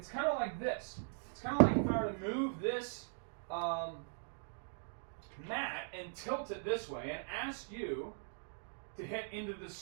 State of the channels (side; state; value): left; silent; digital silence